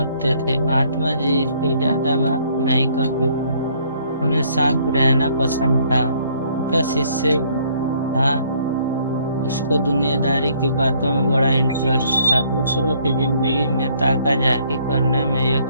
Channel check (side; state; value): both; inverted; correlation -0.64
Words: थे। महात्मा जी से ज्यादा बात नहीं करते थे, उन्हें शांत रहना पसंद था। उनका शिष्य था, उसको दुनियादारी की बातों में बड़ा इंटरेस्ट था। दूसरों की जिंदगी में ताका झाकी करने में